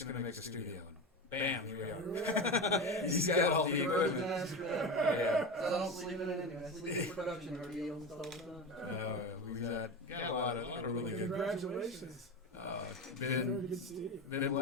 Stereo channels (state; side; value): normal; both; correlation 0.23